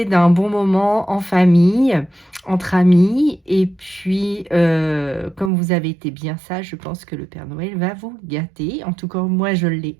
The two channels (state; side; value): drops out; left; at 5.5 s